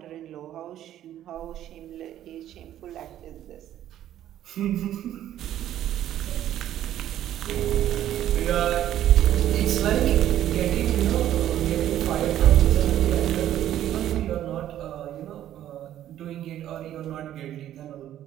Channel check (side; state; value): left; quieter; 12.0 dB